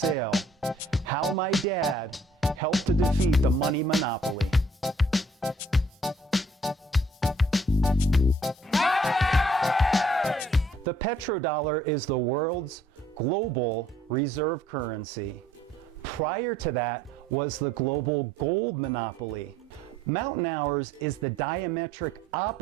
How My Dad Helped to Defeat the Money Monopoly. The petrodollar is the world's global reserve currency. Prior to that was the global gold monopoly. Mountain Hours is the diametric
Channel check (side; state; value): both; normal; correlation 0.60